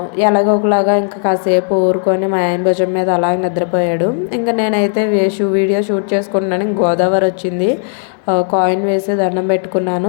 ఎలాగో ఒకలాగా ఇంకా కాసేపు ఊరుకొని మా ఆయన భుజం మీద అలాగే నిద్రపోయాడు. ఇంకా నేనైతే వీడియో షూట్ చేసుకుంటున్నాను. గోదావరి వచ్చింది, కాయిన్ వేసి దండం పెట్టుకున్నాను.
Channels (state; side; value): silent; right; 57 dB below the other